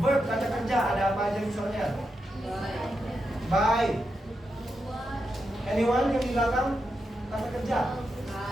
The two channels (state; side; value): normal; both; correlation 0.86